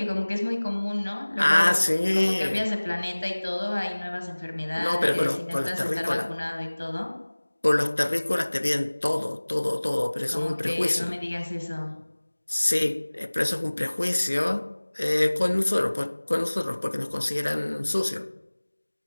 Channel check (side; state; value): both; inverted; correlation -1.00